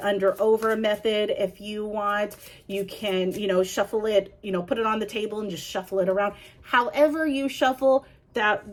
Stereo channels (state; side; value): identical; both; correlation 1.00